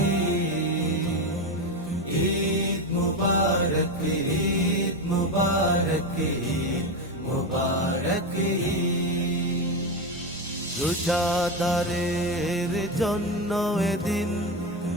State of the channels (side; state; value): both; normal; correlation 0.14